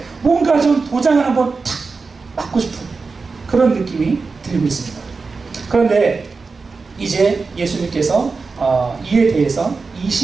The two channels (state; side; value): quieter; left; 4.4 dB